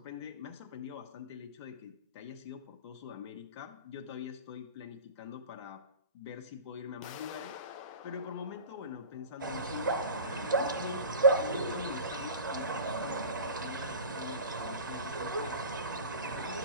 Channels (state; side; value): inverted; both; correlation -0.35